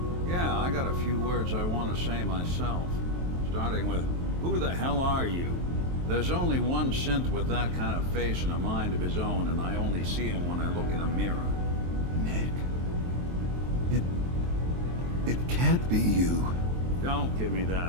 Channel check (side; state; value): left; late; 23 ms